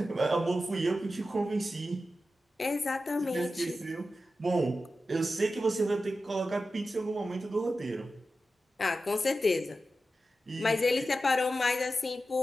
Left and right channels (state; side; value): normal; both; correlation 0.92